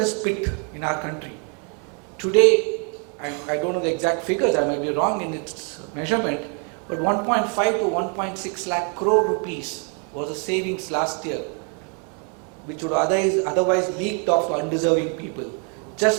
pit in our country. Today, I don't know the exact figures, I might be wrong in its measurement, but 1.5 to 1.6 lakh crore rupees was the savings last year, which would otherwise leaked off to undeserving people.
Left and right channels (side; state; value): left; quieter; 38.4 dB